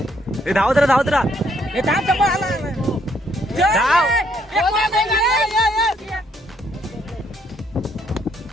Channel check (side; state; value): both; normal; correlation 0.70